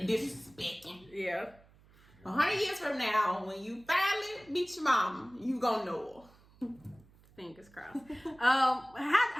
disrespecting. Yeah. 100 years from now, when you finally meet your mom, you gonna know her. Fingers crossed.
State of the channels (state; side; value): noise; right; hum, 27 dB below the sound